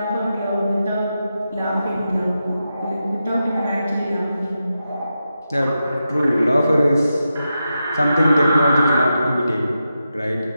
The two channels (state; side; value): inverted; both; correlation -0.88